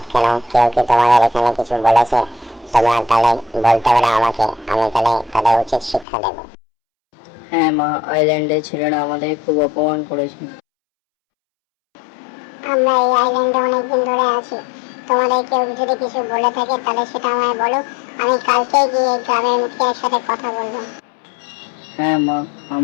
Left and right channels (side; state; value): right; drops out; at 6.1 s